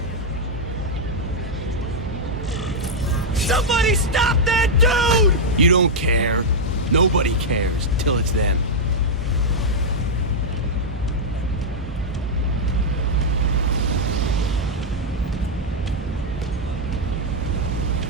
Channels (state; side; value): normal; both; correlation -0.04